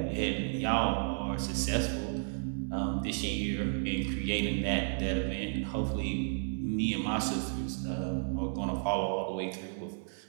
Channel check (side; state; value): left; silent; 56 dB below the other